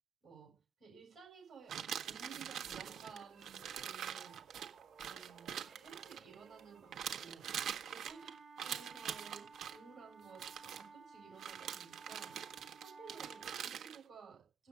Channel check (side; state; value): left; quieter; 8.0 dB